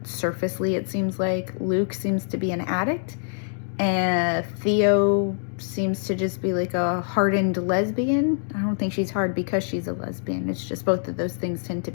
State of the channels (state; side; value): silent; right; digital silence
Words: surfacely, it seems like. Luke seems to be an addict, and Theo seems to just be like a hardened lesbian. I don't think she's hard because she's a lesbian. It's just both of those things tend to